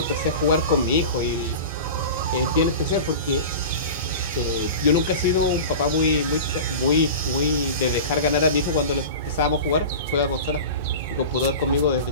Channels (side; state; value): both; inverted; correlation -0.32